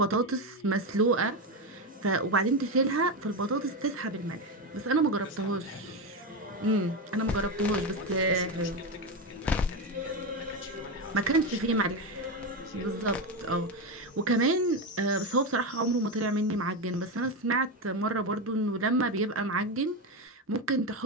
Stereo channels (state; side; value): normal; both; correlation 0.14